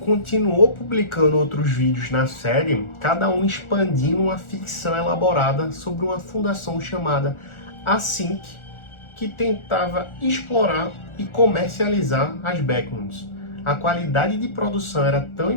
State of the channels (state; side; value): late; right; 1.4 ms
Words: publicando outros vídeos na série, cada um expandindo uma ficção elaborada sobre uma fundação chamada Async, que tentava explorar e comercializar as Backrooms. A qualidade de produção era tão